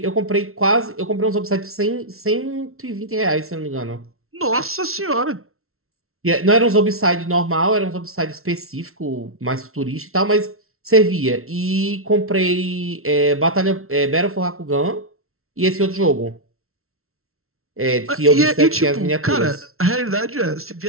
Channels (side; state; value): left; late; 0.62 ms